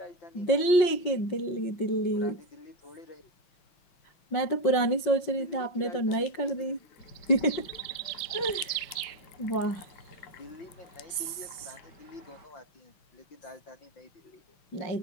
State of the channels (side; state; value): right; late; 5.6 ms